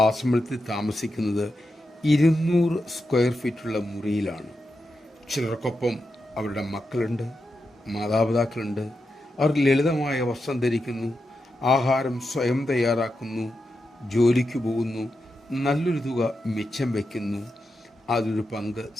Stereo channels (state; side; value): normal; both; correlation 0.87